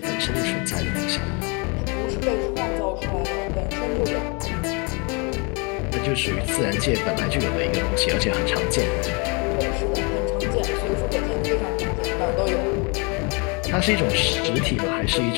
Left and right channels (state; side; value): quieter; right; 31.6 dB